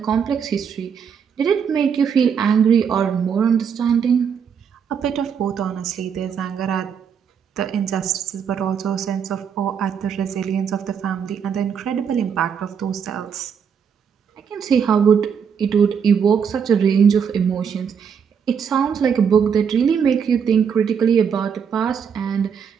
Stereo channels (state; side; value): quieter; left; 7.1 dB